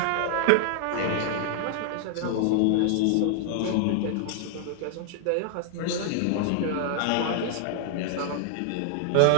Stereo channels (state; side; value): different; both; correlation 0.00